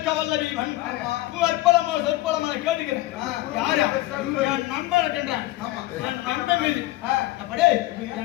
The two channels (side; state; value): right; quieter; 17.5 dB